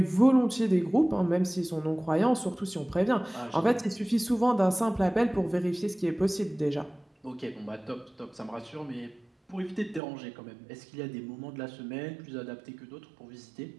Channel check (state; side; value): drops out; left; at 10.0 s